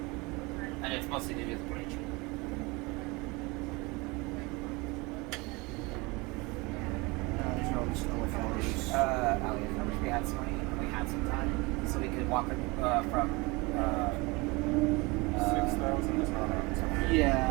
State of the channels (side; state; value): left; quieter; 25.3 dB